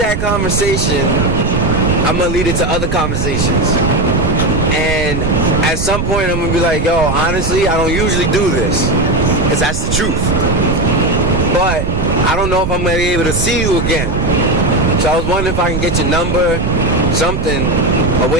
conversation, I'm gonna lead it to other conversations. And at some point, I'm gonna be like, yo, honestly, I don't usually do this, because that's the truth. But I don't know if I'm gonna be able to see you again. So I was wondering if I can get your number, something, a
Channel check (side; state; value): right; noise; rumble, 3 dB below the sound